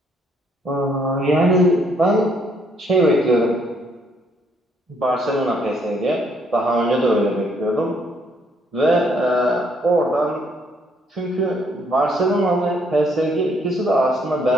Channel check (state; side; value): normal; both; correlation 0.69